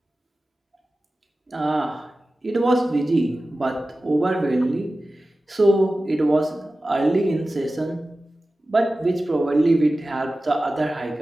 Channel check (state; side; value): normal; both; correlation 0.95